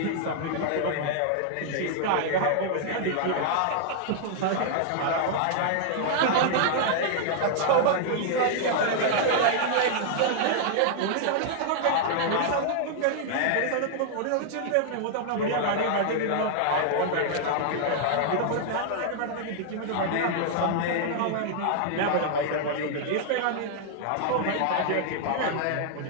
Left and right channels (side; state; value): both; different; correlation -0.01